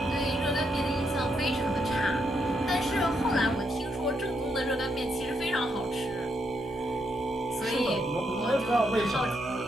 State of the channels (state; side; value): normal; both; correlation 0.78